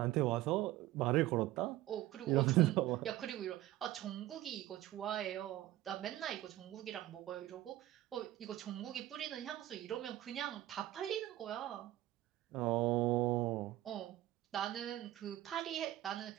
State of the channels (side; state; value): left; quieter; 15.1 dB